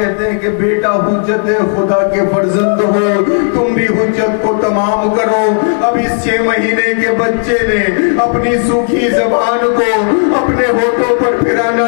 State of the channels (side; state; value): right; silent; digital silence